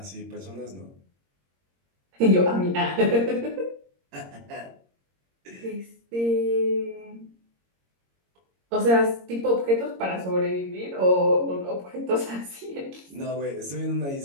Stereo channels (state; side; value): late; left; 22 ms